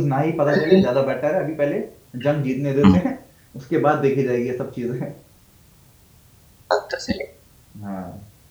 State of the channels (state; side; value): identical; both; correlation 1.00